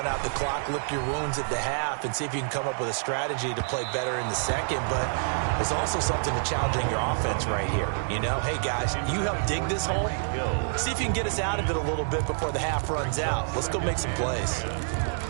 out the clock, lick your wounds at the half, and see if you can come up with a strategy to play better in the second. But there's also something to challenging your offense right here. You know, hey, guys, you help dig this hole. See if you can get us out of it a little bit before the half runs out. Let's go make some plays.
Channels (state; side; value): silent; left; digital silence